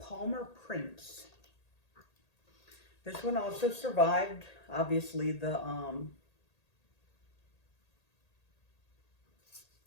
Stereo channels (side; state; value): right; late; 1.8 ms